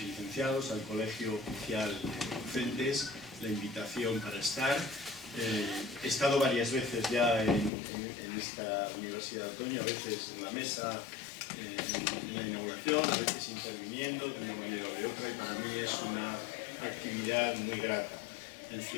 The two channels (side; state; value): right; drops out; at 7.7 s